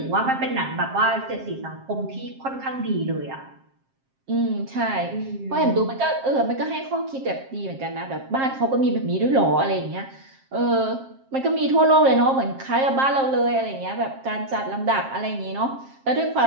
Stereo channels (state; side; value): late; left; 7.5 ms